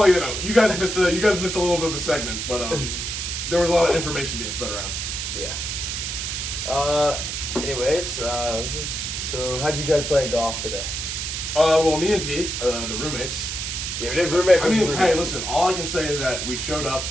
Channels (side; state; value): right; noise; hiss, 4 dB below the sound